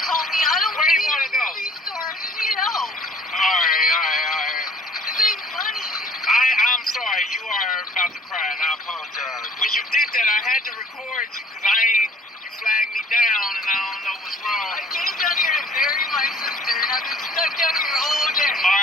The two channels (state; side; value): normal; both; correlation 0.52